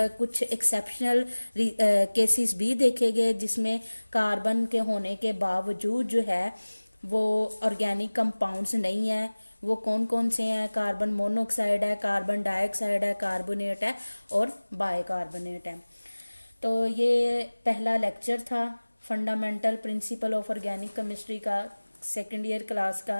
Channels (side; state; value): both; inverted; correlation -1.00